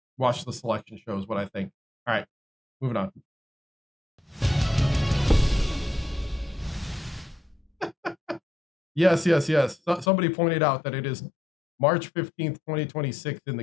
watch the selection show is what I think. All right, moving on. Yes. Somebody pointed out that it is March 15th, 2026 in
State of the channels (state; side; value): drops out; right; at 10.1 s